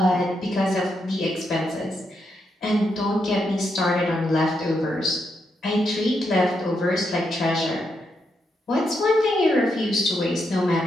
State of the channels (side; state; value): both; normal; correlation 0.81